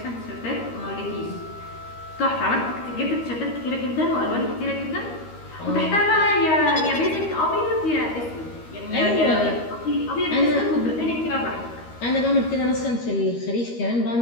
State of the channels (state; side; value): late; right; 13 ms